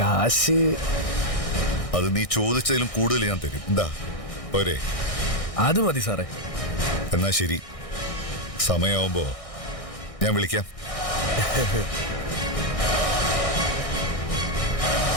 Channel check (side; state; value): right; late; 1.6 ms